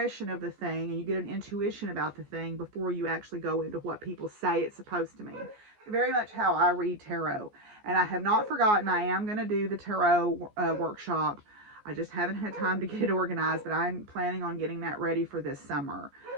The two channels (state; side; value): late; left; 14 ms